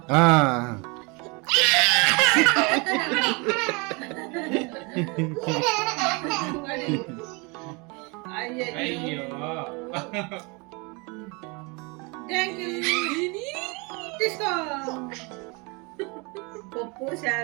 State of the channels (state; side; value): quieter; left; 29.5 dB